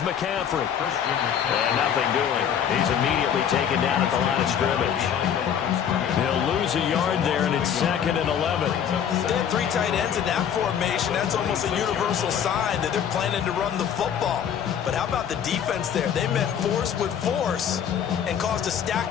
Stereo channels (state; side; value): quieter; right; 8.6 dB